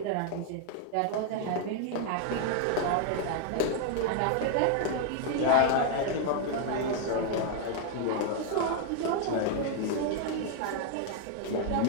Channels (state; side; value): different; both; correlation 0.00